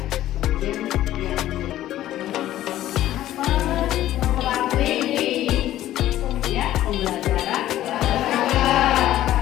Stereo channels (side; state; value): right; quieter; 13.6 dB